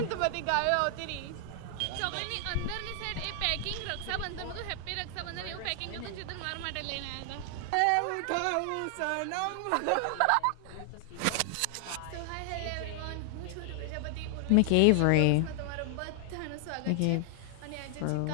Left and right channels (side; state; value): both; different; correlation 0.00